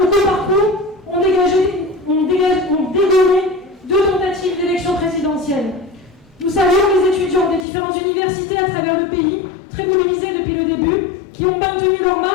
au coup par coup, ont dégommé 2 tentatives d'élection présidentielle. Nous saluons les étudiants des différentes universités à travers le pays, très mobilisés depuis le début, qui ont maintenu leur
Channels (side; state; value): right; drops out; at 7.7 s